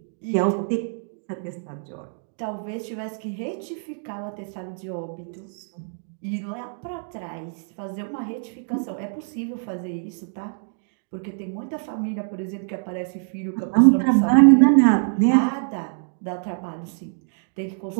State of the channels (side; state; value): left; silent; digital silence